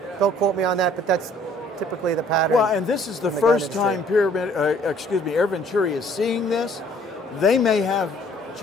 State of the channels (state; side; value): normal; both; correlation 0.58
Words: Don't quote me on that, but that's typically the pattern. Well, and this is the first time Venturi is seeing this. They may have